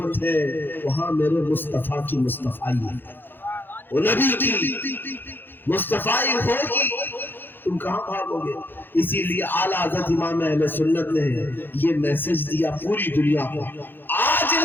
ہے وہاں میرے مصطفیٰ کی مصطفائی ہے، وہ نبی کی مصطفیٰ ہوگی، تم کہاں بھاگو گے؟ اسی لیے اعلیٰ حضرت امام اہل سنت نے یہ میسج دیا پوری دنیا کو، آج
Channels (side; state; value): right; late; 0.098 ms